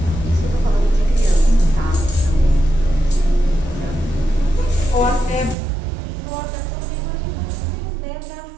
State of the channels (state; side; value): drops out; left; at 5.6 s